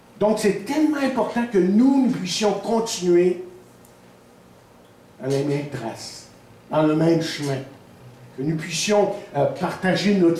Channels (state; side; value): identical; both; correlation 1.00